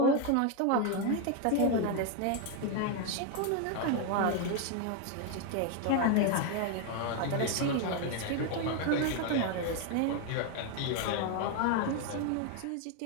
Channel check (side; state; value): both; different; correlation 0.01